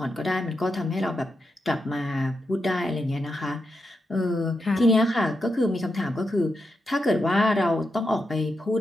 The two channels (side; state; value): both; normal; correlation 0.85